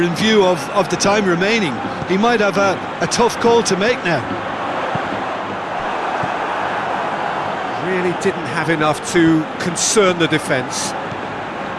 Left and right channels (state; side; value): identical; both; correlation 1.00